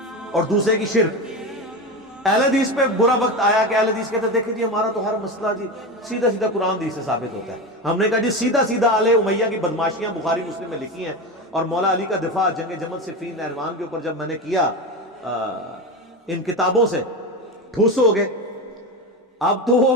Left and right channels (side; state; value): both; normal; correlation 0.21